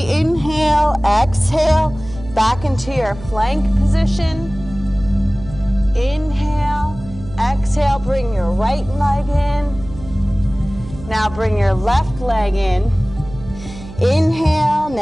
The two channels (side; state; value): right; noise; hum, 15 dB below the sound